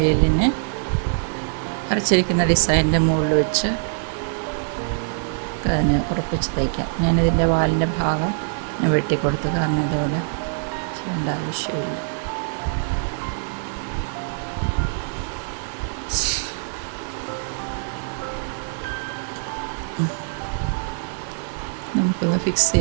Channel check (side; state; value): left; silent; digital silence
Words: വരച്ചിരിക്കുന്ന ഡിസൈനിൻ്റെ മുകളിൽ വെച്ച് തന്നെ ഉറപ്പിച്ച് തയ്ക്കാം. ഞാനിതിൻ്റെ വാലിൻ്റെ ഭാഗം ഞാൻ വെട്ടിക്കൊടുത്തു, കാരണം ഇതുപോലെ ചെയ്യേണ്ട ആവശ്യമില്ല. നമുക്കൊന്ന് ഫിക്സ്